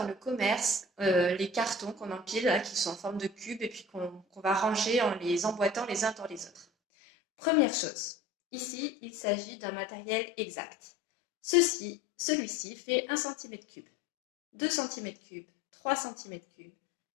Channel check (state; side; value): drops out; right; at 6.7 s